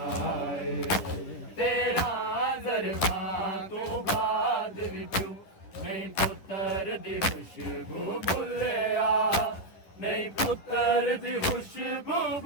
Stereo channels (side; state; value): right; late; 11 ms